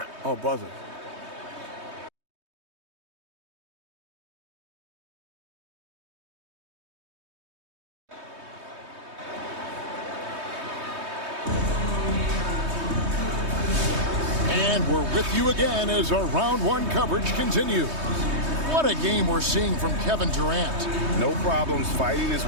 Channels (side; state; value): left; late; 3.2 ms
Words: Oh, buzzer. And we're with you again as our round 1 coverage continues. What a game we're seeing from Kevin Durant. No problems fighting his